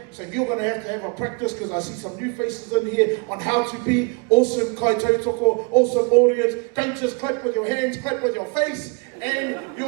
so you're going to have a practice, because I see some new faces in here, on how to be awesome kai tautoko, awesome audience. Don't just clap with your hands, clap with your face and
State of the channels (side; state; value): left; quieter; 32.6 dB